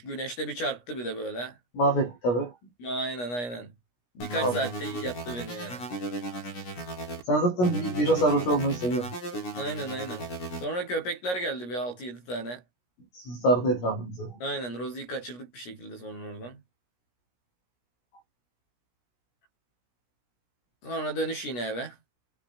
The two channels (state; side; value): late; right; 17 ms